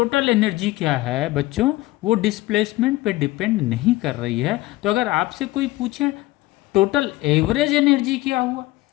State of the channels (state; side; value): quieter; right; 18.5 dB